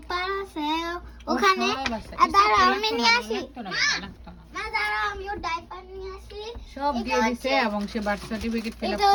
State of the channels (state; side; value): identical; both; correlation 1.00